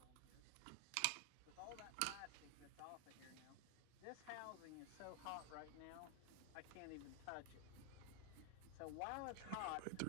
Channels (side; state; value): both; different; correlation 0.00